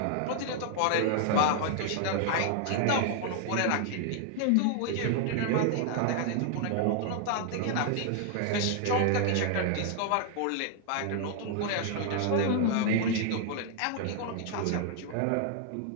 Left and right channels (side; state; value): both; different; correlation 0.00